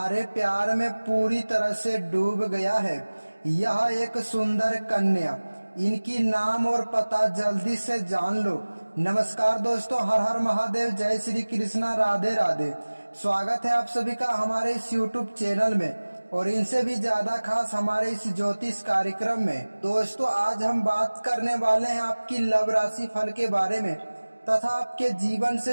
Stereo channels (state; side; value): inverted; both; correlation -1.00